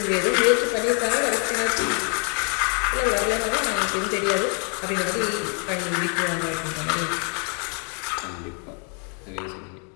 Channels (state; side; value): quieter; right; 39.1 dB